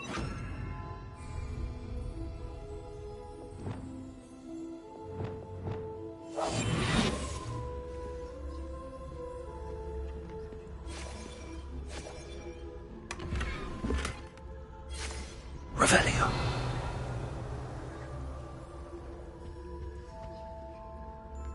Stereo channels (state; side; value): identical; both; correlation 1.00